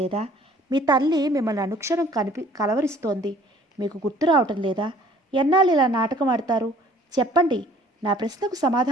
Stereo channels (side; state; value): both; normal; correlation 0.55